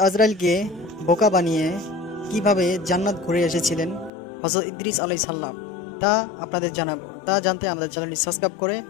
আজরাইলকে বোকা বানিয়ে কিভাবে জান্নাত ঘুরে এসেছিলেন হজরত ইদ্রিস আলাইহিস সালাম, তা আপনাদের জানাবো। তা জানতে আমাদের চ্যানেলটি সাবস্ক্রাইব করে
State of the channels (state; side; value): drops out; right; at 4.1 s